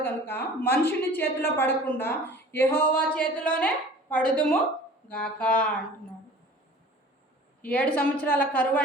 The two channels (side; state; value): both; normal; correlation 0.45